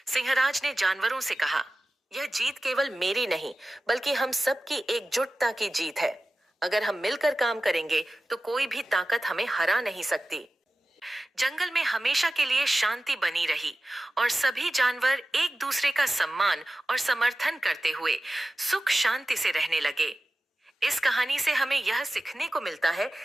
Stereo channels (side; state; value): both; normal; correlation 0.95